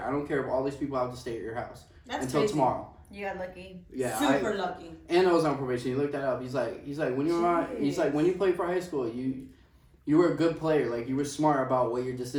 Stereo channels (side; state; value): both; identical; correlation 1.00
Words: I don't care if all these people have to stay at your house until tomorrow." You got lucky. Yeah, super lucky. And I was on probation. He looked that up. He's like when you were when you played for high school, you were a good player. Like, you were smart about what your